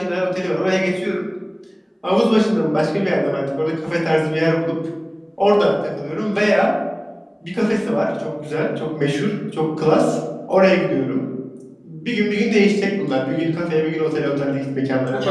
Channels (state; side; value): identical; both; correlation 1.00